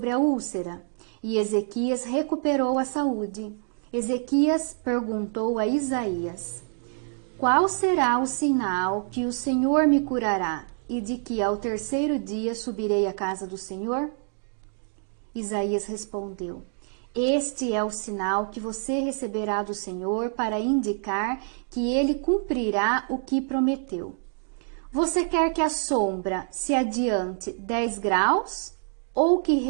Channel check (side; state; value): left; silent; 61 dB below the other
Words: a úlcera, e Ezequias recuperou a saúde. Ezequias perguntou a Isaías: Qual será o sinal que o Senhor me curará e de que ao terceiro dia subirei à casa do Senhor? Isaías respondeu: Este é o sinal que você receberá do Senhor para indicar que ele cumprirá o que prometeu. Você quer que a sombra se adiante 10 graus ou que